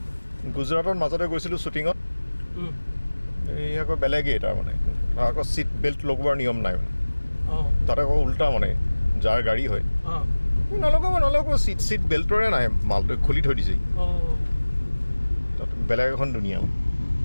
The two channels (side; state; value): both; inverted; correlation -1.00